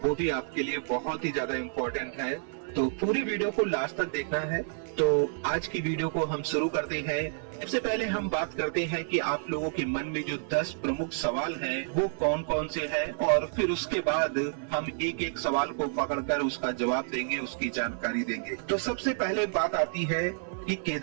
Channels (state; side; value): silent; left; 58 dB below the other